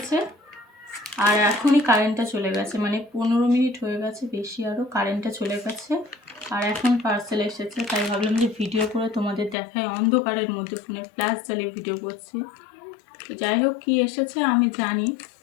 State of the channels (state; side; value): drops out; right; at 9.6 s